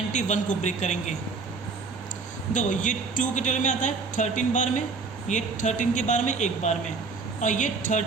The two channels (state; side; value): quieter; left; 4.5 dB